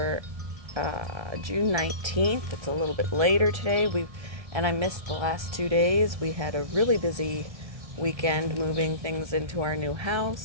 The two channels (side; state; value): left; late; 1.6 ms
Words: June 19th. It's a little bit later today. And I missed the last 2 days. We had a really busy weekend moving things into our new